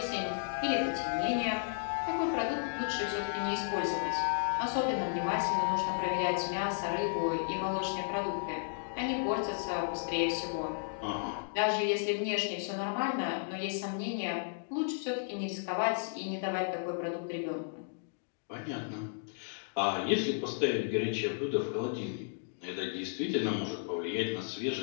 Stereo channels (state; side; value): silent; right; digital silence